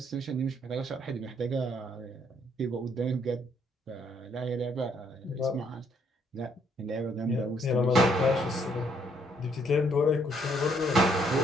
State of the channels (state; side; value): normal; both; correlation 0.69